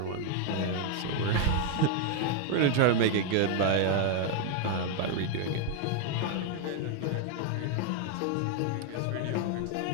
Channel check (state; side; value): different; both; correlation 0.00